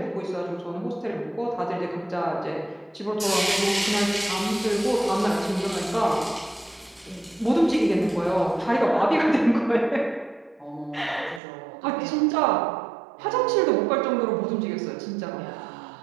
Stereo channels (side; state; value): left; drops out; at 11.4 s